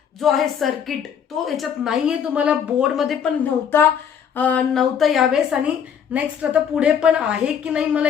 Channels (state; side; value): quieter; right; 7.9 dB